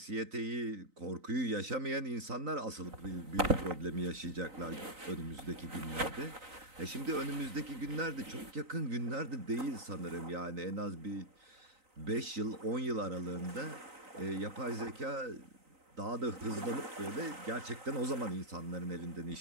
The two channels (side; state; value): left; late; 3.9 ms